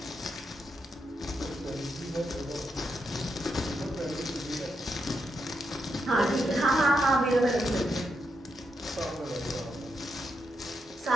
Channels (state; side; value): normal; both; correlation 0.82